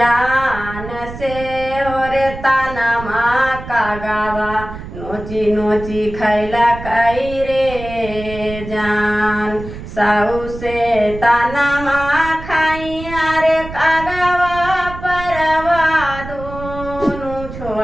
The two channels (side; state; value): right; noise; rumble, 11 dB below the sound